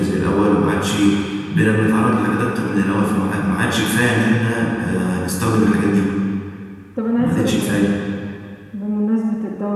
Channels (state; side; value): identical; both; correlation 1.00